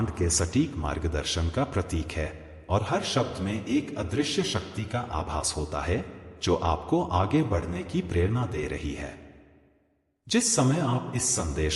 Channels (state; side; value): identical; both; correlation 1.00